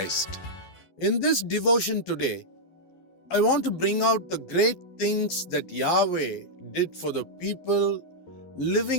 In this devotion today, I want to bring out the great things that Yahweh did for the people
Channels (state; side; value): late; right; 12 ms